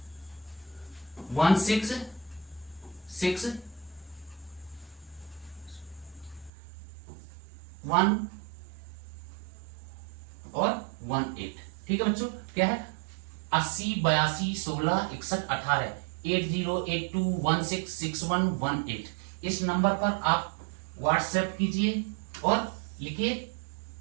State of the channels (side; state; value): left; drops out; at 6.5 s